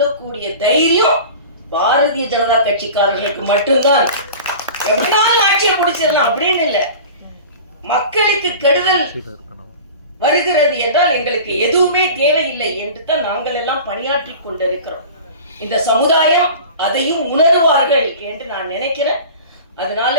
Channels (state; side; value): inverted; both; correlation -0.37